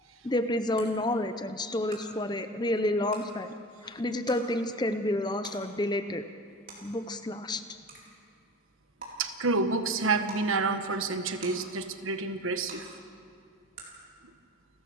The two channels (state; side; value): normal; both; correlation 0.34